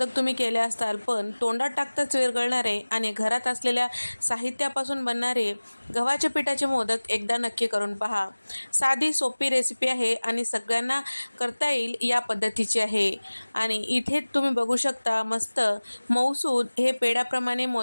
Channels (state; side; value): inverted; both; correlation -1.00